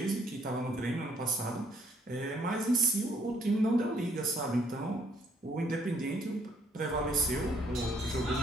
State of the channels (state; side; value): normal; both; correlation 0.67